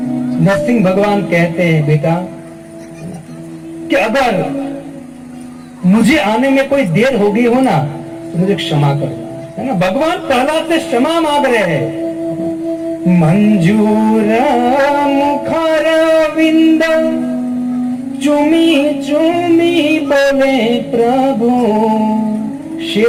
नरसिंह भगवान कहते हैं बेटा कि अगर मुझे आने में कोई देर हो गई हो ना तो मुझे क्षमा कर, है ना। भगवान प्रहलाद से क्षमा मांग रहे हैं। मंजूर मुखार विंद चुमी चुमी बोले प्रभु।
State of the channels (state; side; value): identical; both; correlation 1.00